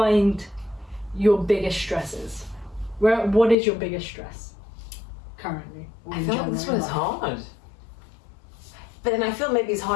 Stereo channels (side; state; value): right; drops out; at 3.6 s